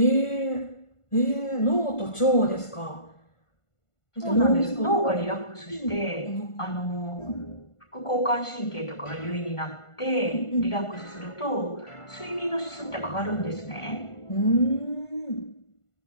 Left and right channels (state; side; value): late; right; 1.5 ms